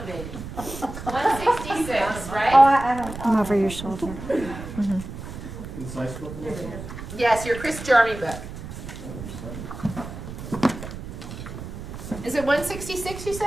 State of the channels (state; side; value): noise; right; rumble, 10 dB below the sound